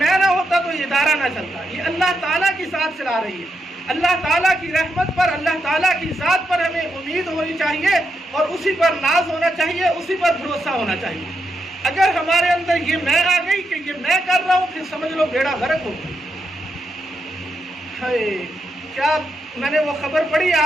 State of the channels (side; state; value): both; normal; correlation 0.84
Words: نہ ہوتا تو یہ ادارہ نہ چلتا۔ یہ اللہ تعالیٰ کی ذات چلا رہی ہے۔ اللہ تعالیٰ کی رحمت پر، اللہ تعالیٰ کی ذات پر ہمیں امید ہونی چاہیے، اور اسی پر ناز ہونا چاہیے، اسی پر بھروسہ ہونا چاہیے۔ اگر ہمارے اندر یہ میں آ گئی کہ یہ میں کر رہا ہوں، پھر سمجھ لو بیڑا غرق ہو گیا۔ کیا میں نے وہ خبر پڑھی،